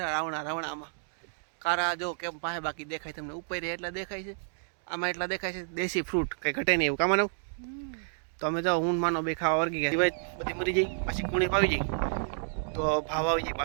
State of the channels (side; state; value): left; silent; digital silence